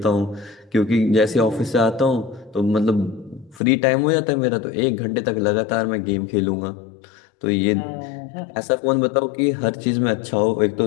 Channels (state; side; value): drops out; right; at 3.6 s